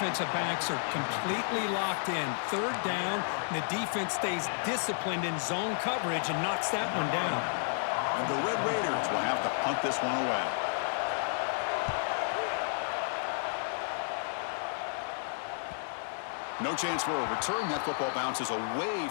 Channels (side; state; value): right; silent; digital silence